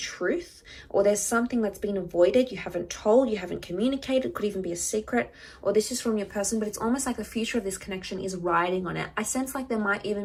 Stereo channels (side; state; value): both; identical; correlation 1.00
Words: or there's something that's been avoided, you haven't told, you haven't communicated, could even be a secret, or this is from your person, but it's almost like the future of this connection is riding on it. I sense like there might